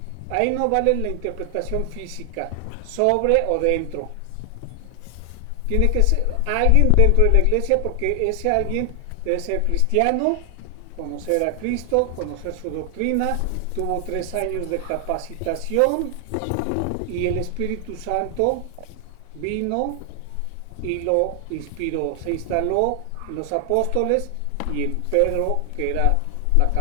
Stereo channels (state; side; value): different; both; correlation 0.00